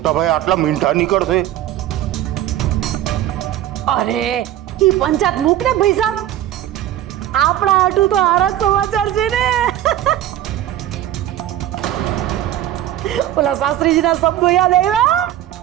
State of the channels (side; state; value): left; quieter; 12.5 dB